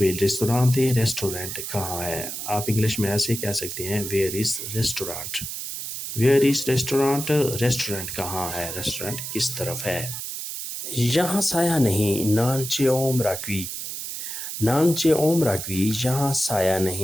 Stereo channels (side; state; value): right; noise; hiss, 6 dB below the sound